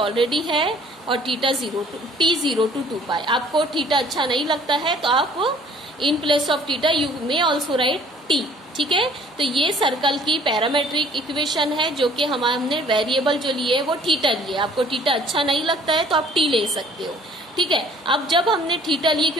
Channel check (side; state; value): both; normal; correlation 0.55